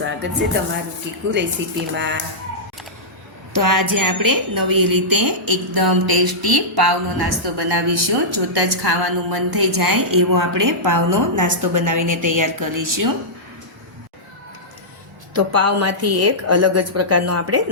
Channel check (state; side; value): normal; both; correlation -0.13